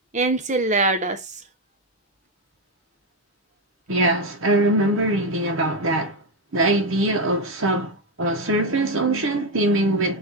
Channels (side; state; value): both; normal; correlation 0.08